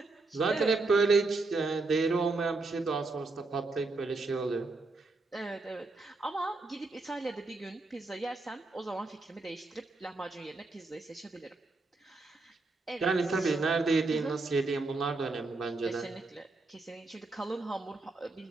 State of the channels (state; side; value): quieter; left; 3.5 dB